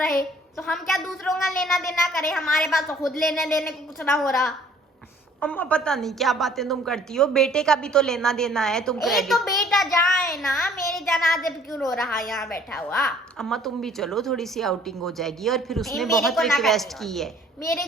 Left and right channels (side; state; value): both; normal; correlation 0.56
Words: तो हम क्या दूसरों का लेना देना करें? हमारे पास तो खुद लेने देने को कुछ ना हो रहा। अम्मा पता नहीं क्या बातें तुम करती हो, बेटे का भी तो लेना देना है, तुम ए क्रेडिट। तो बेटा जाए ना, मेरे जनाजे पे क्यों रो रहा है यहाँ बैठा हुआ? अम्मा तुम भी चलो, थोड़ी सी आउटिंग हो जाएगी। और फिर उसने मेरे बहुत को ना रिक्वेस्ट करनी की है। मेरे